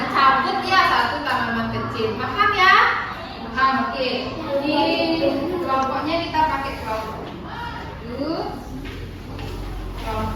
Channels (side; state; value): both; identical; correlation 1.00